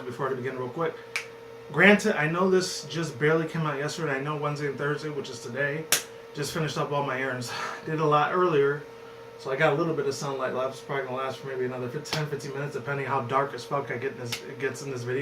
I begin, real quick, granted, I know this just barely came out yesterday. I know Wednesday and Thursday, which is today, just finished up all my errands. Did a lot earlier. So I got a little bit of sunlight left. It's probably going to last for maybe another 10-15 minutes, depending how dark as fuck it gets in this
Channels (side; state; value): both; identical; correlation 1.00